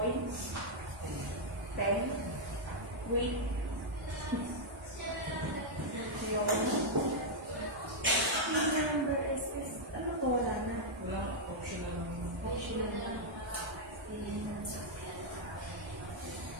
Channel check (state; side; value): normal; both; correlation -0.04